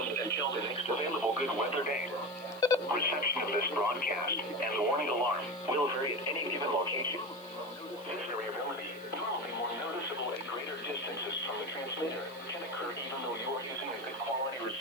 until the next available good weather day. Reception of this broadcast and the warning alarm will vary at any given location. This variability, normally more noticeable at greater distances from the transmitter, can occur even though you are using a good quality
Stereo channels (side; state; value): left; noise; hiss, 23 dB below the sound